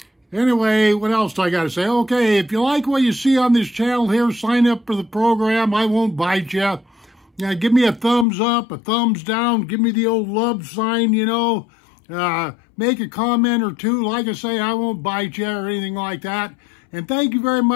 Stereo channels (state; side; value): drops out; right; at 8.2 s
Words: anyway, what else do I got to say? Okay, if you like what you see on this channel here, sign up for the program. I won't bite you. Give me a thumbs up, a thumbs down. Give me the old love sign, you know. Make a comment or two. Like I say, I won't bite you or anything like that. And thank you very